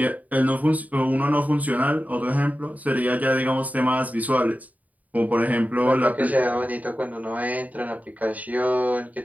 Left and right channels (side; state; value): left; late; 0.074 ms